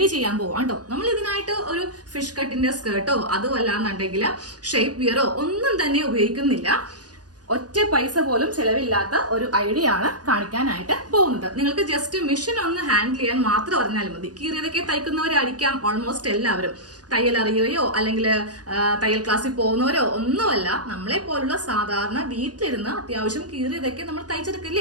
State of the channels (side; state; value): left; late; 0.68 ms